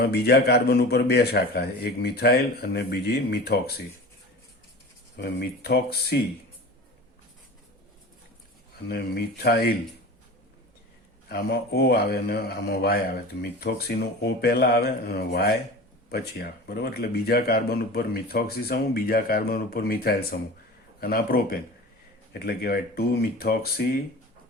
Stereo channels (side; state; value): both; normal; correlation 0.35